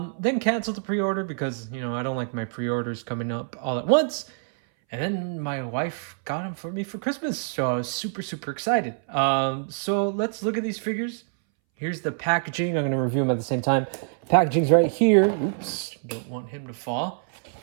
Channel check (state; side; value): silent; left; 61 dB below the other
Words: canceled the pre-order because, I don't like my pre-orders coming up all at once. And then my wife got them for me for Christmas, so I was super excited. So let's look at these figures. Here's the packaging. I'm going to review them at the same time. Packaging's right here. Oops, don't want him to fall.